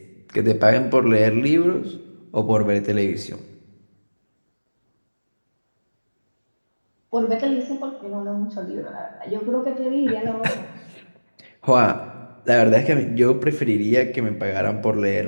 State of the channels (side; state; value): both; inverted; correlation -1.00